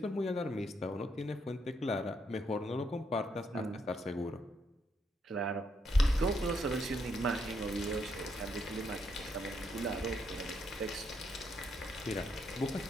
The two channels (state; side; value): normal; both; correlation 0.76